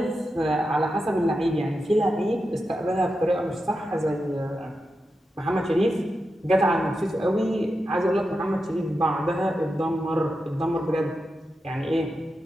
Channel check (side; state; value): both; normal; correlation 0.89